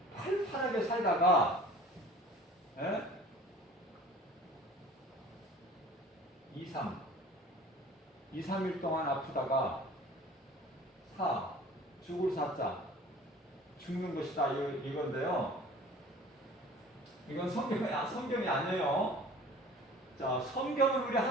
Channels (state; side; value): normal; both; correlation 0.46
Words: 살다가 2, 3일 동안 아프다가 죽을 사자 죽는 것이다 이건데요. 이건 성경이 아니에요. 자, 성경은 우리